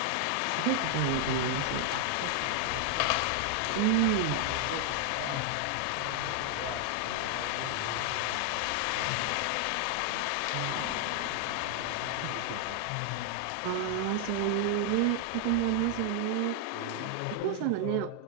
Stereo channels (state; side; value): different; both; correlation 0.00